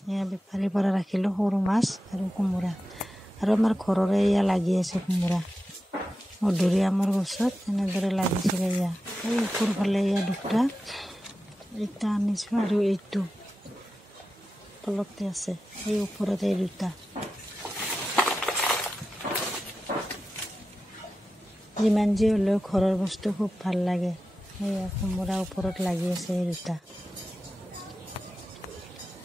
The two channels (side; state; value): both; normal; correlation 0.92